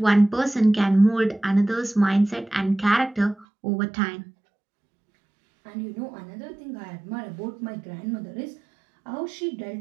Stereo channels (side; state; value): left; drops out; at 3.5 s